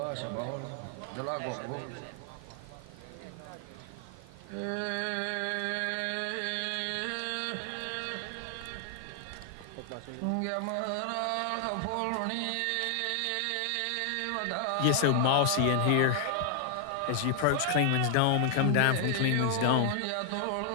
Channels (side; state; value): both; different; correlation 0.00